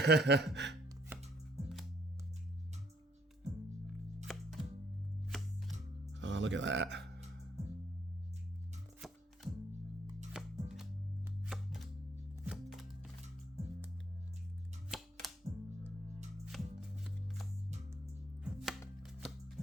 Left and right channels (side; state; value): both; normal; correlation 0.68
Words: Oh, look at that.